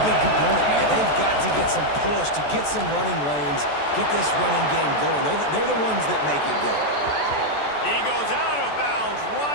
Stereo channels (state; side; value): late; right; 14 ms